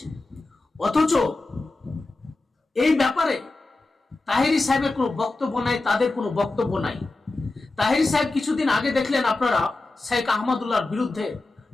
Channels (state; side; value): quieter; right; 3.2 dB